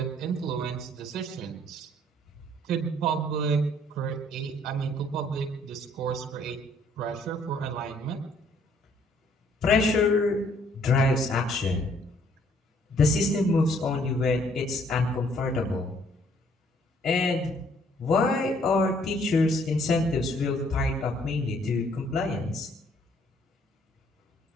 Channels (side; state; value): both; normal; correlation 0.63